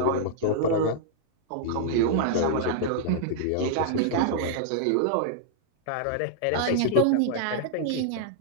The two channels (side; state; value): both; different; correlation -0.01